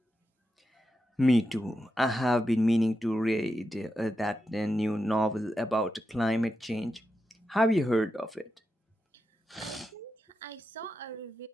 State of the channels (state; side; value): normal; both; correlation 0.87